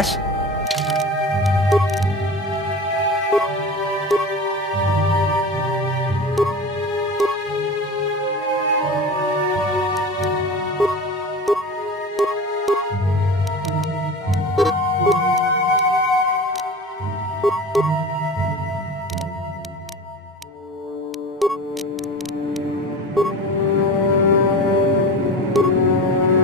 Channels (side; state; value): both; normal; correlation 0.33